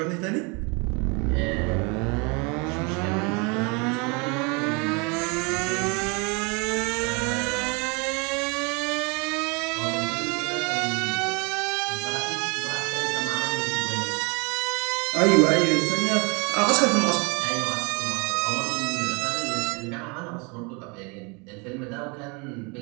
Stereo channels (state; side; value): quieter; left; 30.9 dB